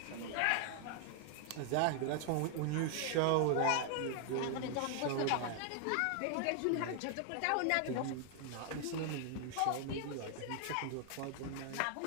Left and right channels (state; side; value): different; both; correlation 0.00